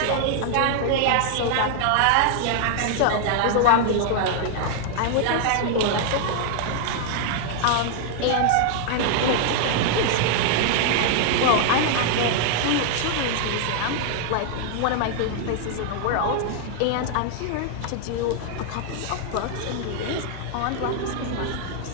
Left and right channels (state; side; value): different; both; correlation 0.00